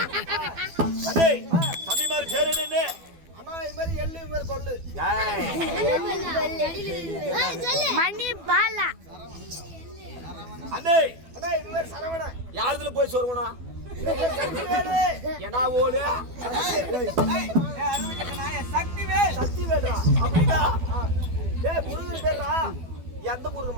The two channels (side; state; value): left; late; 12 ms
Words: அதே தம்பி மாதிரி பேர் என்ன அண்ணா இந்த மாதிரி எள்ளு இந்த மாதிரி கொள்ளு மணி பாலா அண்ணே அண்ணா இந்த மாதிரி சரவணா யாருதுல போய் சொருவணும் என்ன ஓடு சக்தி வேடா அப்படின்னா டேய் முருகன் பேர்ரா எந்த முருகன்